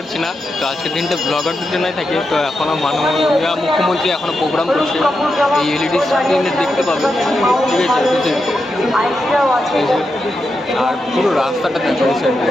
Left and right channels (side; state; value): both; normal; correlation 0.87